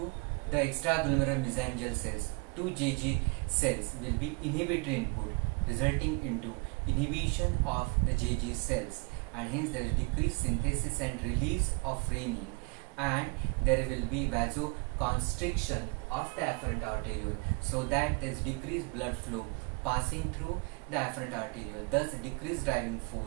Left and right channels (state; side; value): quieter; left; 32.1 dB